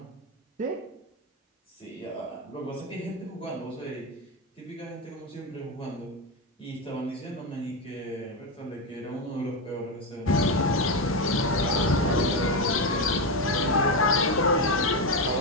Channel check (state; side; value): normal; both; correlation 0.11